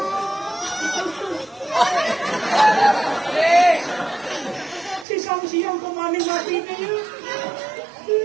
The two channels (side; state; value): left; drops out; at 5.1 s